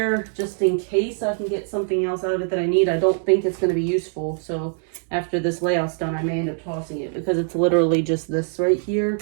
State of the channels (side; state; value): left; silent; 64 dB below the other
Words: just in case I can get something else out of it that I need. I don't think it's going to be useful. So after this layout's done, I may end up tossing it because it's literally just this right here.